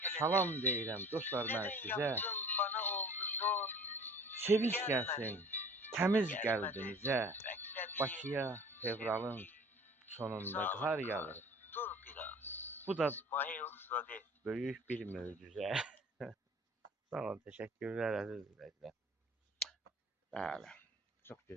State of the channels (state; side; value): normal; both; correlation 0.47